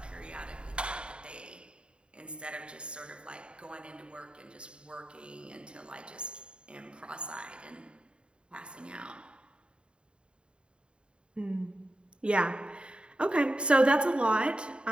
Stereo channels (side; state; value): left; late; 0.053 ms